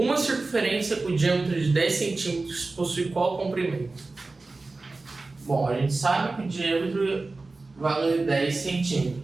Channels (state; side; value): quieter; left; 3.5 dB